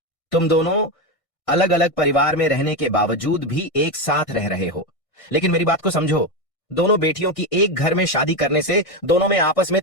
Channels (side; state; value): right; late; 1.6 ms